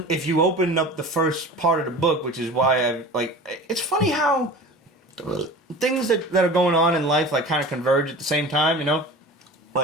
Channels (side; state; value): both; normal; correlation 0.37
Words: if you open up the first part of the book, which is why I like, it's funny how things that are going on in life like kind of converge at the same time, you know?